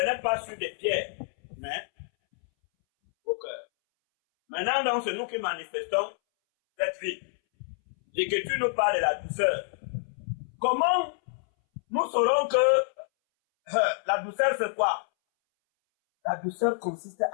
pas sur des pierres, mais au cœur. Maintenant, donc, c'est nous qui manifestons cette vie. L'Écriture nous parle de la douceur. Comment nous saurons que la douceur, c'est quoi? La douceur consiste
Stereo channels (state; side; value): silent; right; 59 dB below the other